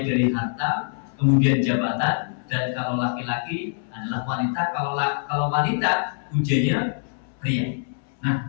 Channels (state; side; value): silent; right; 62 dB below the other